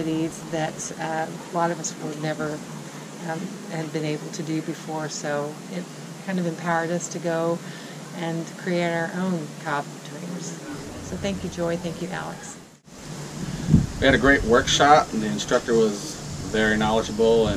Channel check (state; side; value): identical; both; correlation 1.00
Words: that a lot of us would never have been able to do before, so it kind of empowered us to go and create our own cob dreams. So thank you, Joy. Thank you, Alex. We had a great workshop, and the instructor was very knowledgeable